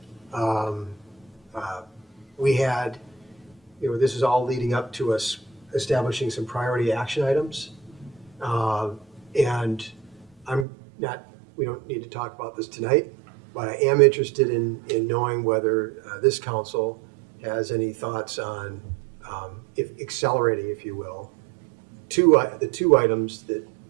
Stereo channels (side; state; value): left; drops out; at 10.7 s